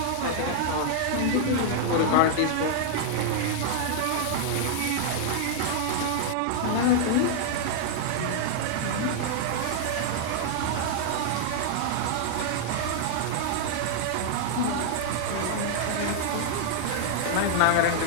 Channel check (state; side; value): different; both; correlation -0.01